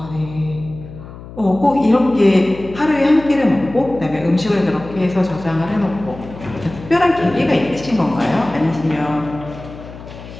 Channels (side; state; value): left; noise; hum, 15 dB below the sound